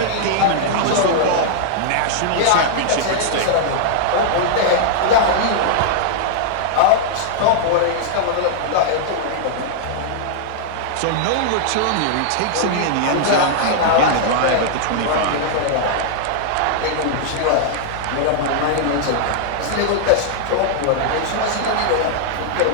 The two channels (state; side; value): different; both; correlation -0.01